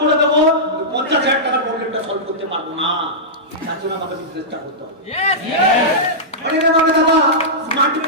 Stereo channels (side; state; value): both; normal; correlation -0.13